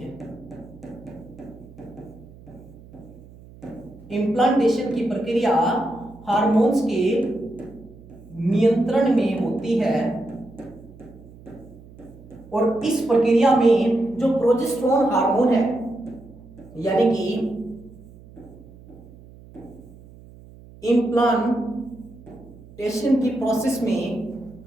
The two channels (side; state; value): right; noise; hum, 21 dB below the sound